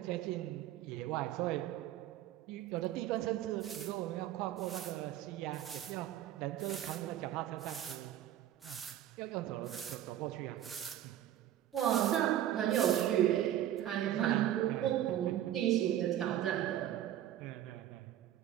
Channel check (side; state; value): left; quieter; 12.1 dB